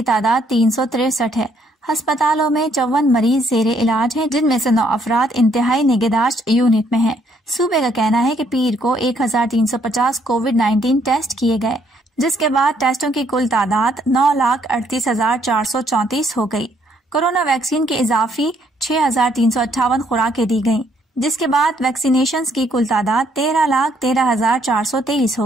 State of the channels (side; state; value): both; normal; correlation 0.69